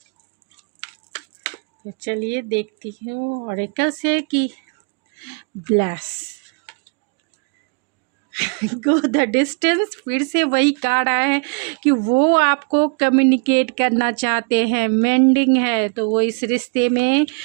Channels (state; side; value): quieter; left; 35.7 dB